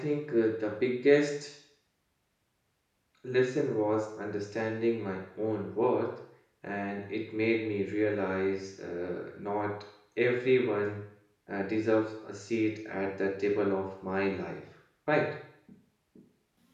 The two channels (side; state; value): both; identical; correlation 1.00